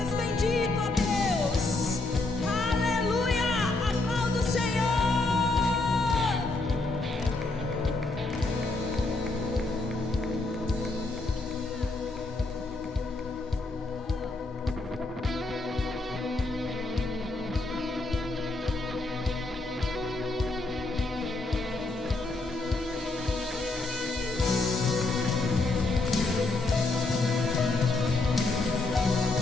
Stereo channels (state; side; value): quieter; right; 3.1 dB